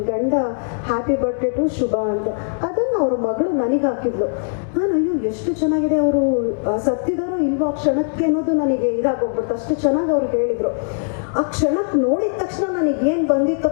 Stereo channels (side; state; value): right; silent; digital silence